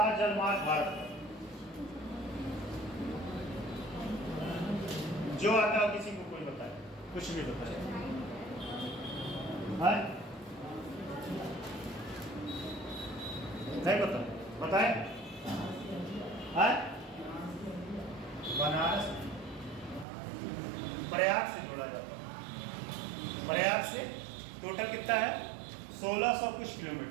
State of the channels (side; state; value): left; drops out; at 20.1 s